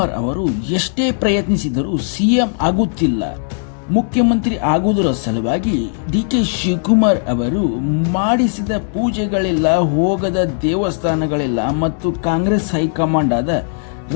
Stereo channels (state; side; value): silent; right; digital silence